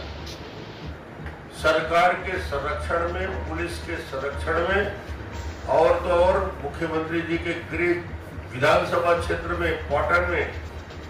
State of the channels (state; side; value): identical; both; correlation 1.00